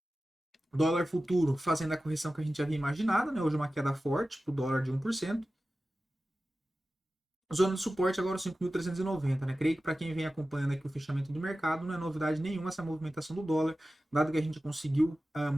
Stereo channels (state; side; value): normal; both; correlation 0.95